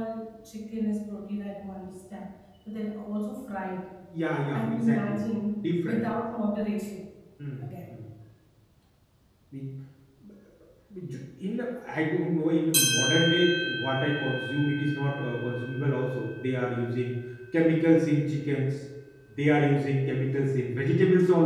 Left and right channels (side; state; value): both; identical; correlation 1.00